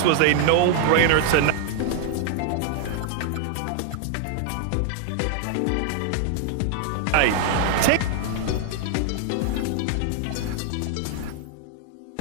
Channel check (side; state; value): both; different; correlation 0.00